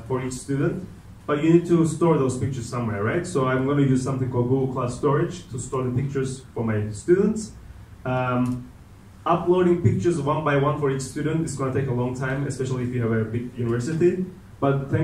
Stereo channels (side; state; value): both; identical; correlation 1.00